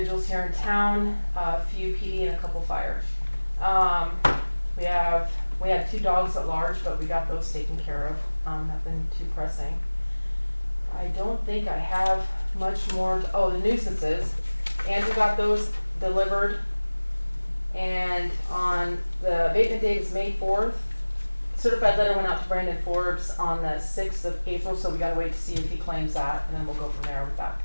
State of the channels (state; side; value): inverted; both; correlation -1.00